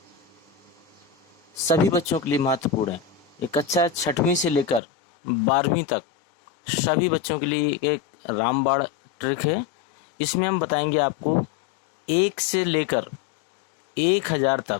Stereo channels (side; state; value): right; drops out; at 4.8 s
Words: सभी बच्चों के लिए महत्वपूर्ण है। ये कक्षा 6वीं से लेकर 12वीं तक सभी बच्चों के लिए एक रामबाण ट्रिक है। इसमें हम बताएंगे आपको 1 से लेकर 1000